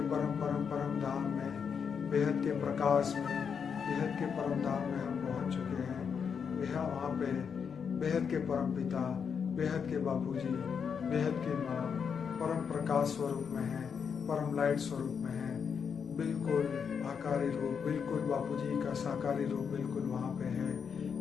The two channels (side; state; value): right; quieter; 6.7 dB